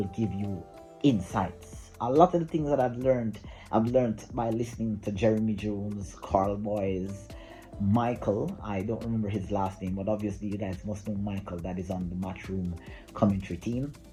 give you insights. A lot of the things that I've learned by listening to Jeremy Jones, Carl Boys, Michael. I don't remember his last name, but obviously you guys must know Michael, that is on the Matchroom commentary team.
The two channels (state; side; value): identical; both; correlation 1.00